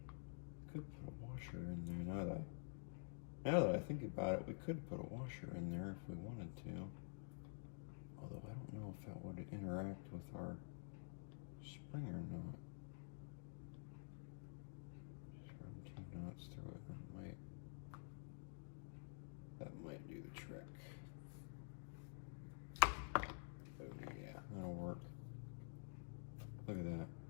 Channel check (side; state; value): right; silent; digital silence